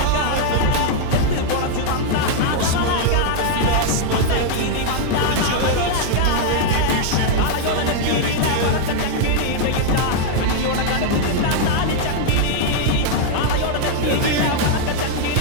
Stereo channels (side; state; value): both; different; correlation -0.01